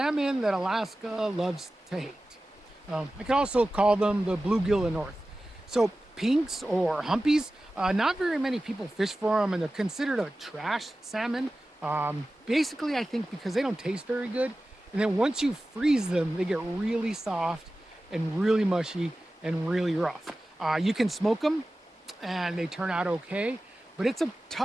that Alaska loves to hate. I could also call them the bluegill in the north. So pinks or humpies, not very many people fish for them, and they're considered a trash salmon. Basically, I think because they don't taste very good, and then once you freeze them, they get really soft and really mushy and really rough. You can smoke them and they turn out okay, but it's a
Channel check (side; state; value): both; normal; correlation 0.95